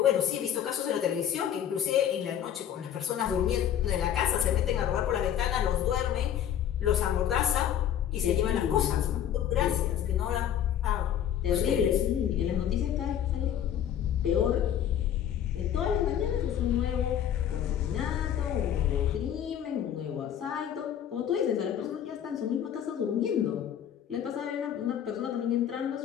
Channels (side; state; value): right; quieter; 9.9 dB